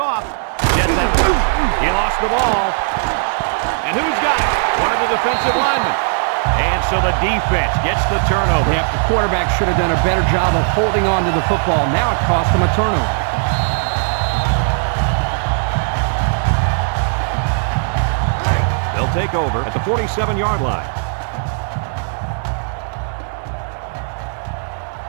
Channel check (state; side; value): silent; left; digital silence